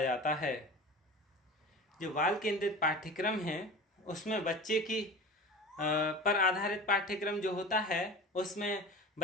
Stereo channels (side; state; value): both; normal; correlation 0.35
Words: है। जो बाल केंद्रित पाठ्यक्रम है उसमें बच्चे की पर आधारित पाठ्यक्रम जो होता है उसमें